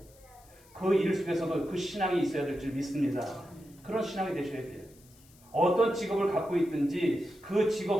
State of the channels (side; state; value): left; noise; hiss, 27 dB below the sound